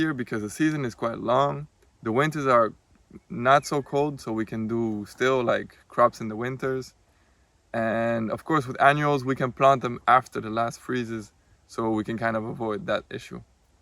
because the season is quite long. The winters are not so cold, so we can do still like crops in the winters. And of course with annuals we can plant them after the last freezes, so we can kind of avoid that issue.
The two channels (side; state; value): both; identical; correlation 1.00